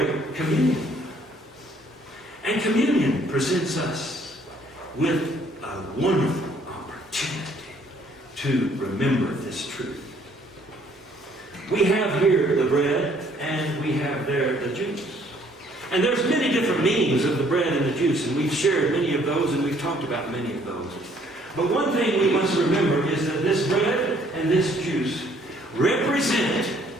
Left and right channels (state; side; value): normal; both; correlation 0.63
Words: communion. And communion presents us with a wonderful opportunity to remember this truth. We have here the bread, and we have there the juice. And there's many different meanings of the bread and the juice, and we've shared many of those, and we've talked about many of those. But one thing we must remember is that this bread and this juice represent